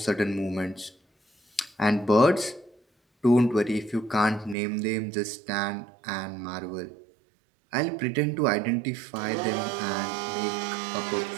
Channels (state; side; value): drops out; left; at 4.5 s